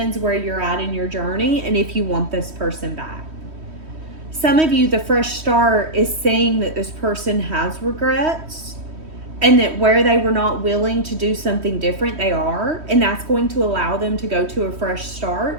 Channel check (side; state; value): left; late; 3.1 ms